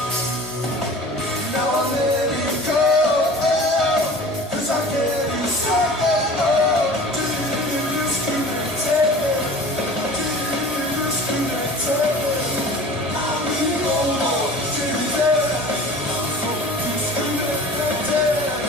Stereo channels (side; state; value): both; normal; correlation 0.41